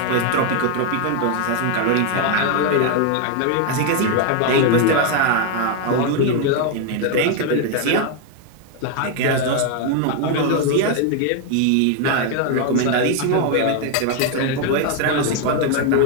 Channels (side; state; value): both; different; correlation 0.01